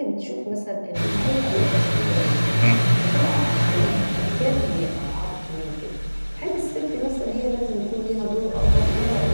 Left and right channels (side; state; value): both; inverted; correlation -1.00